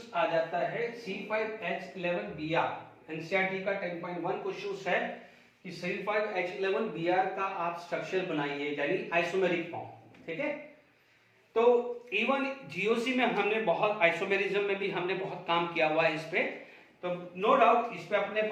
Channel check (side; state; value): both; identical; correlation 1.00